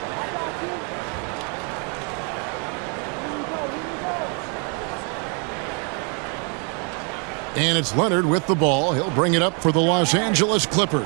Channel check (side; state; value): left; quieter; 36.8 dB